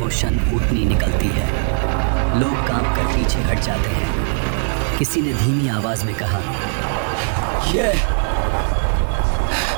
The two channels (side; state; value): left; silent; 64 dB below the other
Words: و شان اونٹنی نکلتی ہے۔ لوگ کام کر پیچھے ہٹ جاتے ہیں۔ کسی نے دھیمی آواز میں کہا، یہ